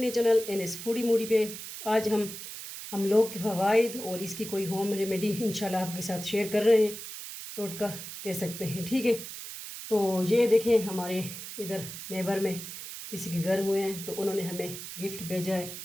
चैनल NS फूडी मूडी पे। आज हम लोग के फ़वाइद और इसकी कोई होम रेमेडी इंशाल्लाह आपके साथ शेयर कर रहे हैं, टोटका कह सकते हैं। ठीक है, तो ये देखें हमारे इधर नेबर में किसी के घर हुए हैं तो उन्होंने हमें गिफ्ट भेजा है।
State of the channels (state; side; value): noise; right; hiss, 10 dB below the sound